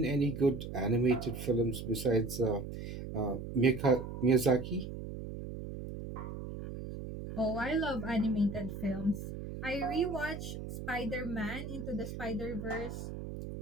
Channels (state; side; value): noise; right; hum, 8 dB below the sound